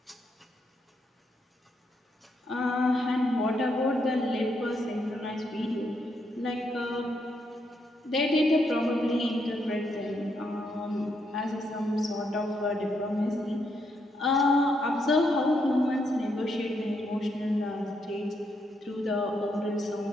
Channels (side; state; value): both; normal; correlation 0.78